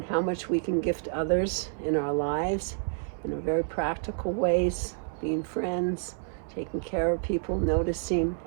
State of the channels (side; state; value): left; silent; 59 dB below the other